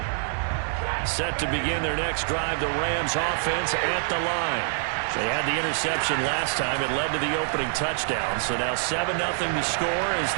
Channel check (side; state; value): left; silent; 61 dB below the other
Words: Set to begin their next drive, the Rams offense at the line. They had the interception last time. It led to the opening touchdown. So now 7-0 to score as